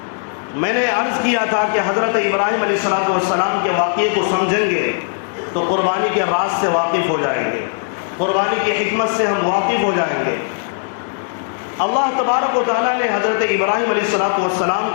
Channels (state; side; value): silent; right; digital silence